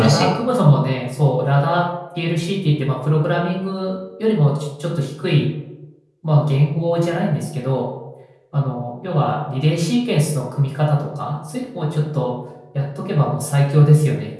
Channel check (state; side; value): identical; both; correlation 1.00